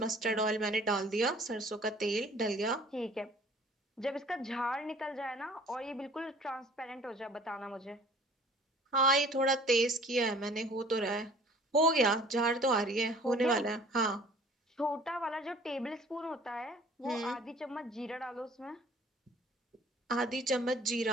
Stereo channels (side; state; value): both; normal; correlation 0.51